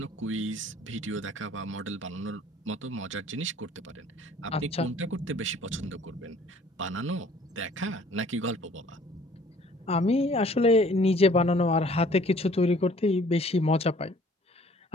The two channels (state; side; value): normal; both; correlation 0.55